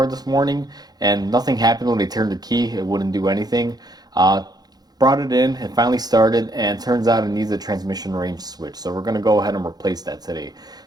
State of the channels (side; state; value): left; late; 0.19 ms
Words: this morning and nothing happened when they turned the key. It wouldn't do anything. Brought it in, it finally started, and turns out it needs a transmission range switch. So we're going to go ahead and replace that today.